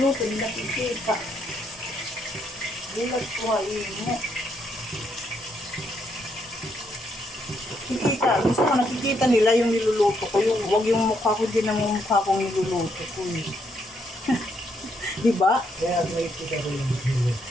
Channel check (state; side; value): normal; both; correlation 0.75